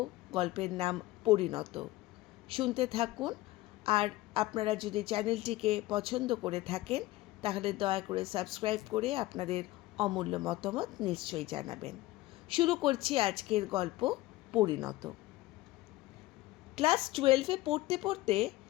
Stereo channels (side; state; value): right; quieter; 17.9 dB